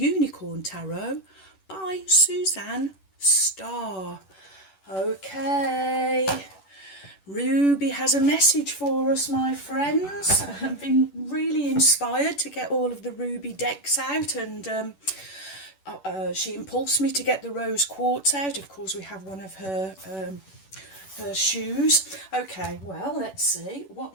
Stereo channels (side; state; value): right; late; 11 ms